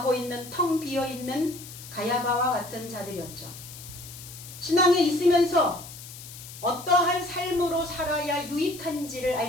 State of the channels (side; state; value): left; noise; hiss, 14 dB below the sound